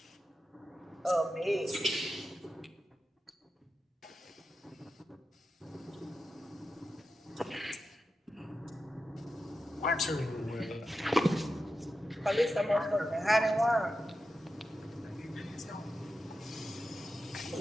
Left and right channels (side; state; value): both; normal; correlation 0.90